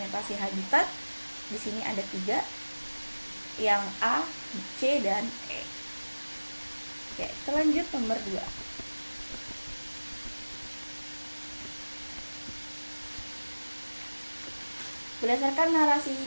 habitat di sini ada 3, yang A, C, dan E. Oke, kita lanjut nomor 2. Berdasarkan narasi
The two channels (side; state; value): both; inverted; correlation -1.00